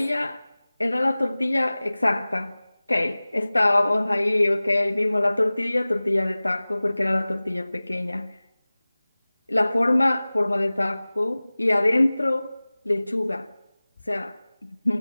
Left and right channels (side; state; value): both; inverted; correlation -0.99